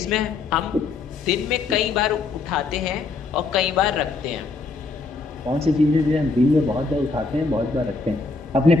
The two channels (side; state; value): right; quieter; 4.0 dB